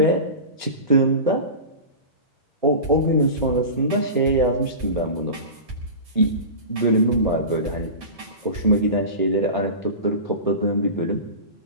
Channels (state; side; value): inverted; both; correlation -0.30